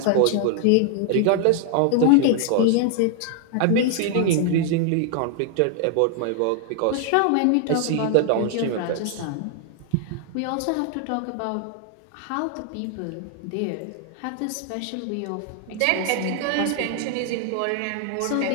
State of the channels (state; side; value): different; both; correlation 0.00